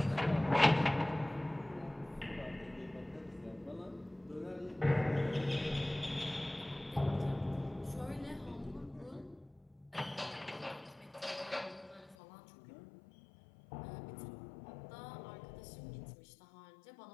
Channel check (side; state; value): right; drops out; at 12.2 s